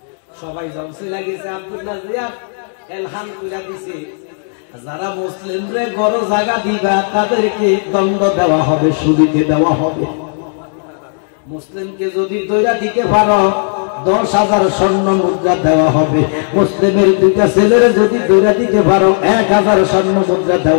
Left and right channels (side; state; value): right; silent; digital silence